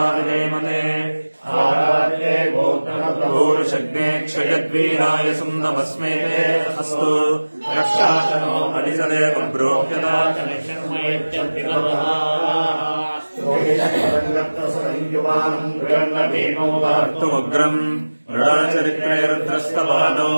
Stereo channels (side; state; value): both; inverted; correlation -1.00